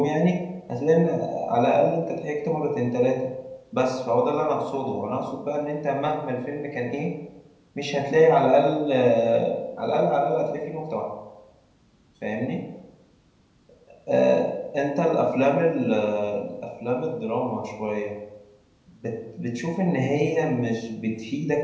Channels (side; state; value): both; identical; correlation 1.00